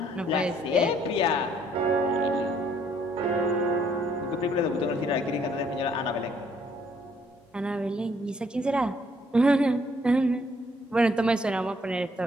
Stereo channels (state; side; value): normal; both; correlation 0.66